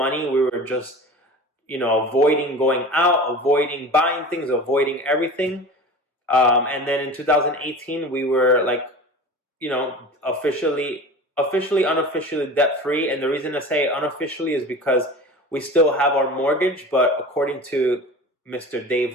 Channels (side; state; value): both; normal; correlation 0.35